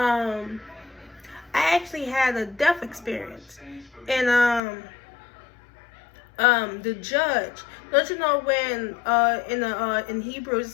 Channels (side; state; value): right; drops out; at 4.6 s